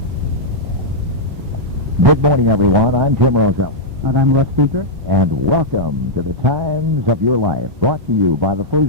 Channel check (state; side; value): late; left; 1.2 ms